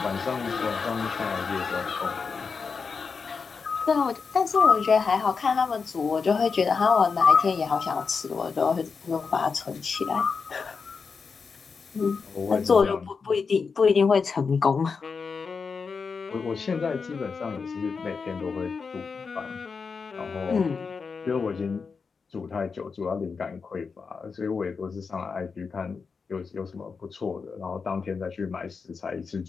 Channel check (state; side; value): quieter; right; 5.2 dB